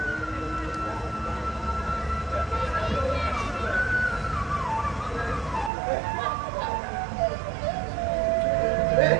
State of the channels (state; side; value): drops out; left; at 5.7 s